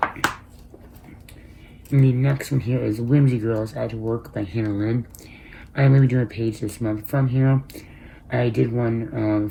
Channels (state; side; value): identical; both; correlation 1.00